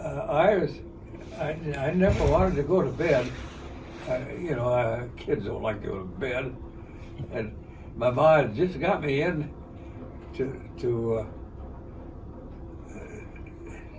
I never wanted to go to bed. You know, kids don't like to go to bed. And my mom just got me in to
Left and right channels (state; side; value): identical; both; correlation 1.00